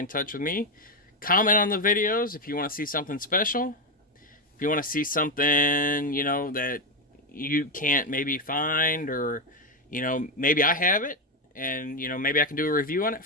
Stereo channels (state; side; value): normal; both; correlation 0.07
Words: touch with me. Comment on the videos if you want to see something special. If you want to see something, you know, that you can't maybe find, or, you know, maybe I have it, and, you know, maybe I can do a review on it